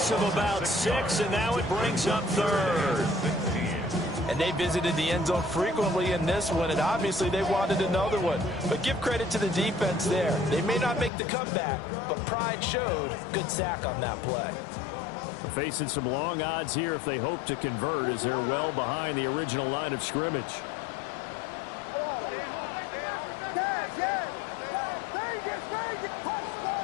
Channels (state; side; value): drops out; right; at 11.1 s